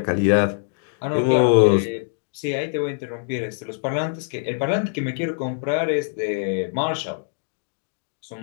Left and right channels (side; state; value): right; silent; digital silence